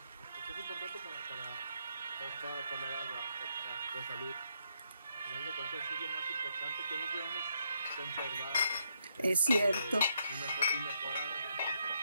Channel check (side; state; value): both; inverted; correlation -0.76